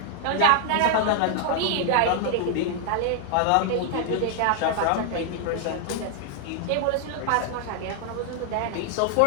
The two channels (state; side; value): different; both; correlation 0.00